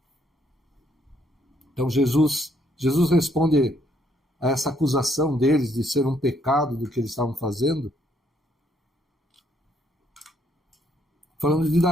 Então Jesus responde a essa acusação deles de ser um pecado do que eles estavam fazendo, falando de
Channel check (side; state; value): both; normal; correlation 0.70